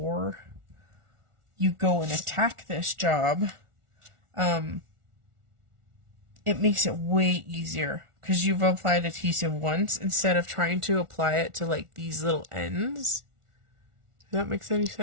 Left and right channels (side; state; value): left; late; 1.4 ms